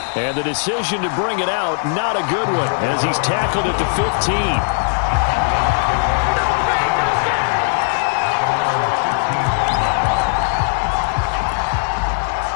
And the decision to bring it out, not a good one, as he's tackled at the 15.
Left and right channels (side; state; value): right; silent; 63 dB below the other